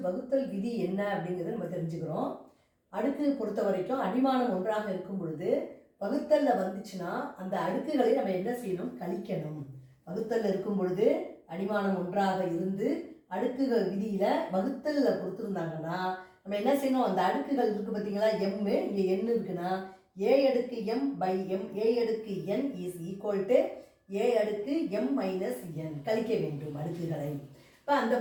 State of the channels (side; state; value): both; identical; correlation 1.00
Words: வகுத்தல் விதி என்ன அப்படிங்கிறத நம்ம தெரிஞ்சுக்கிறோம். அடுக்கு பொறுத்த வரைக்கும் அடிமானம் ஒன்றாக இருக்கும் பொழுது வகுத்தலில் வந்துச்சுன்னா அந்த அடுக்குகளை நம்ம என்ன செய்யணும்? கழிக்கணும். வகுத்தலில் இருக்கும் பொழுது அடிமானம் ஒன்றாக இருந்து அடுக்குகள் விதியில் வகுத்தலில் கொடுத்துருந்தாங்கன்னா நம்ம என்ன செய்யணும்? அந்த அடுக்குகள் இருக்குது பார்த்தீங்களா, எம்மு, இங்கே என் இருக்குன்னா ஏ அடுக்கு எம் பை எம் ஏ அடுக்கு என் இஸ் ஈக்குவல் டு ஏ அடுக்கு எம் மைனஸ் என். கழிக்க வேண்டும் அடுக்குகளை. இப்போ அந்த